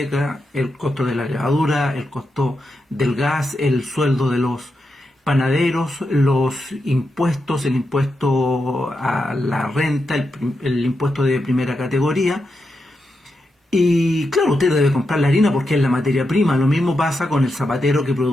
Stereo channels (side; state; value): both; normal; correlation 0.86